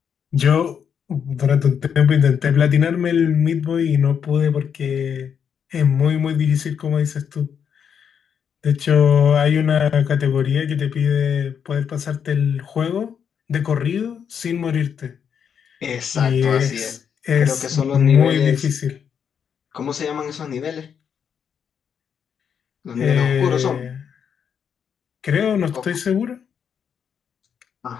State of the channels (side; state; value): right; quieter; 7.6 dB